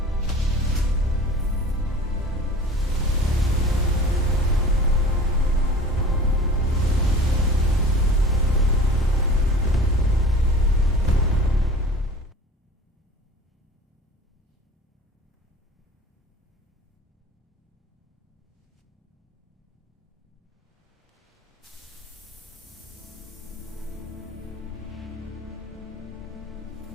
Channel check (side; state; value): both; normal; correlation 0.42